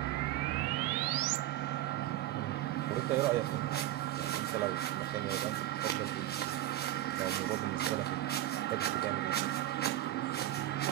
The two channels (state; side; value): quieter; left; 14.5 dB